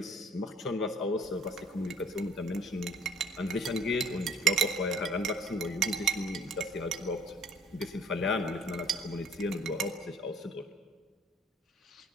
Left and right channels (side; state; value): both; normal; correlation 0.54